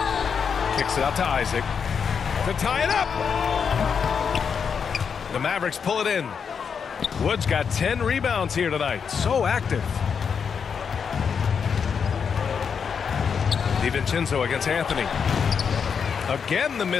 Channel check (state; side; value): quieter; right; 6.5 dB